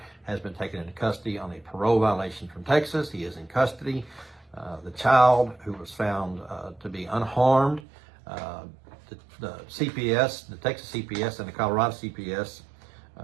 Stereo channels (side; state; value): left; drops out; at 7.9 s